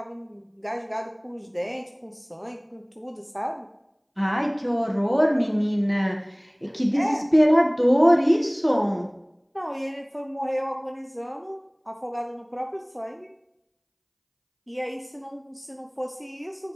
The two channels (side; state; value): both; identical; correlation 1.00